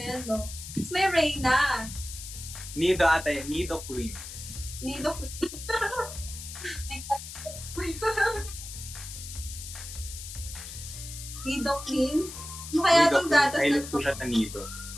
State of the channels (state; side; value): noise; left; hiss, 11 dB below the sound